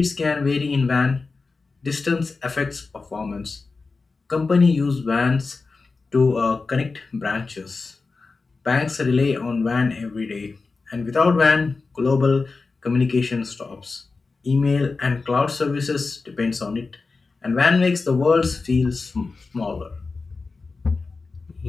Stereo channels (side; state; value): right; quieter; 4.1 dB